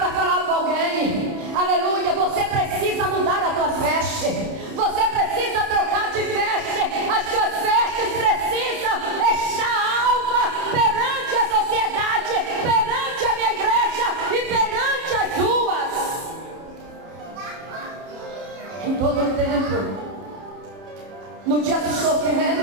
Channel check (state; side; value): late; left; 30 ms